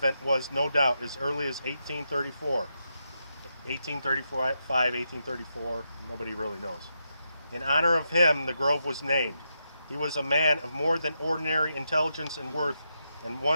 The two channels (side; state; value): both; inverted; correlation -0.84